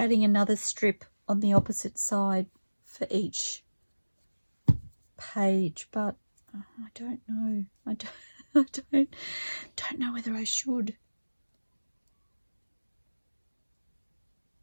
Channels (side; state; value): both; inverted; correlation -1.00